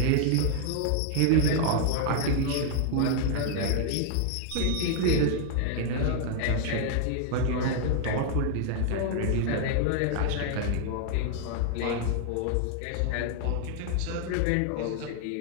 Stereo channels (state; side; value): different; both; correlation 0.00